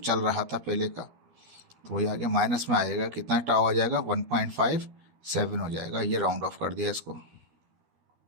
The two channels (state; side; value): late; left; 13 ms